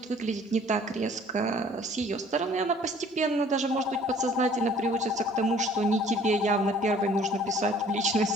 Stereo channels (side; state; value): both; normal; correlation 0.54